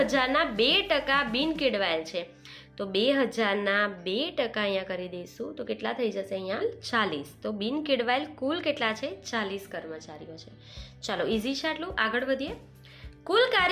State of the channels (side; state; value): both; identical; correlation 1.00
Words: 2% બિન કેળવાયેલ છે, તો 2000ના 2% અહીંયા કરી દઈશું તો કેટલા થઈ જશે? અહીંયા 40. તો બિન કેળવાયેલ કુલ કેટલા છે? 40 કર્મચારીઓ છે. ચાલો, ઇઝી છે આટલું. આગળ વધીએ. કુલ